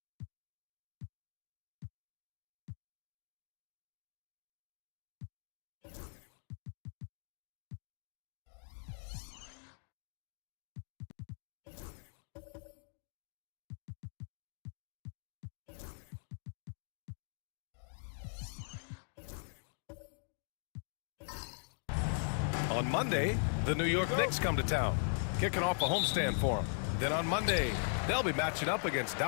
On Monday, the New York Knicks come to town, kicking off a homestand for them. Then on Monday, they'll be matching up against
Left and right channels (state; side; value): silent; right; digital silence